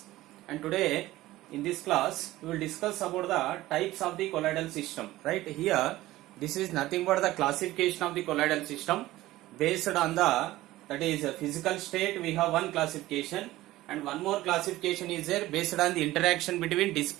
And today in this class we will discuss about the types of the colloidal system. Right here this is nothing but the classification of the colloidal system based on the that is physical state. We have one classification, and one more classification is there based on the interaction between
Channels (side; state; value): left; quieter; 16.7 dB